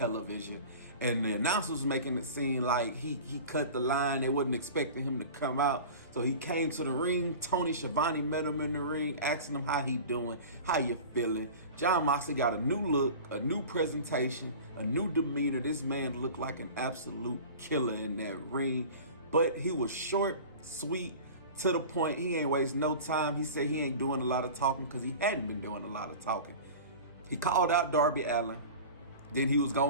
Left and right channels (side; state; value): both; inverted; correlation -0.37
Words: And the announcers was making it seem like he cut the line. They wasn't expecting him to come out. So he came to the ring. Tony Schiavone met him in the ring, asking him how he doing, how you feeling. Jon Moxley got a new look, a new presentation, a new demeanor. This man looked like an absolute killer in that ring. But he was short, sweet, to the point. He ain't waste no time. He said he ain't doing a lot of talking because he hadn't been doing a lot of talking. He called out Darby Allin. Then he was